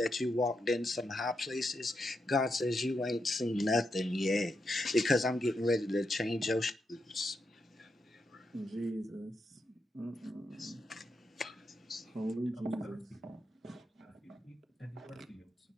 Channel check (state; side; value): normal; both; correlation 0.84